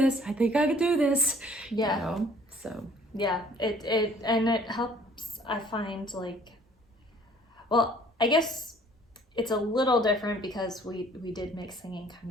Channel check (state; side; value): normal; both; correlation 0.56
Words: do this. Yeah. You know? So yeah, it helps. I find, like, well, I guess it's a little different because we did make singing kind